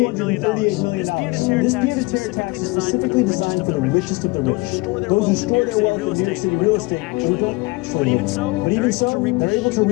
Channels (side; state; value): right; quieter; 24.8 dB